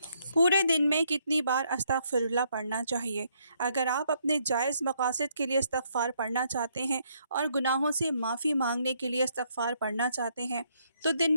پورے دن میں کتنی بار استغفر اللہ پڑھنا چاہیے؟ اگر آپ اپنے جائز مقاصد کے لیے استغفار پڑھنا چاہتے ہیں اور گناہوں سے معافی مانگنے کے لیے استغفار پڑھنا چاہتے ہیں تو دن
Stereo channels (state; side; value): inverted; both; correlation -0.72